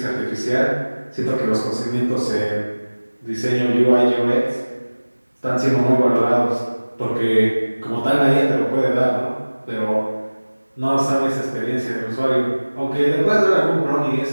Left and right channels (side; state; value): both; inverted; correlation -1.00